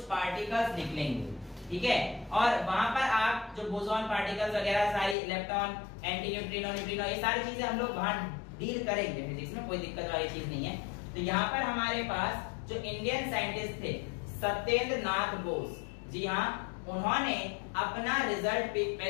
पार्टिकल्स निकलेंगे। ठीक है, और वहां पर आप जो बोसॉन पार्टिकल्स वगैरह सारी, इलेक्ट्रॉन, एंटी न्यूट्रिनो, न्यूट्रिनो, ये सारी चीजें हम लोग वहां डील करेंगे फिजिक्स में, कोई दिक्कत वाली चीज नहीं है। तो यहाँ पर हमारे पास जो इंडियन साइंटिस्ट थे सत्येंद्र नाथ बोस, जी हाँ, उन्होंने अपना रिजल्ट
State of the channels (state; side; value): drops out; right; at 5.2 s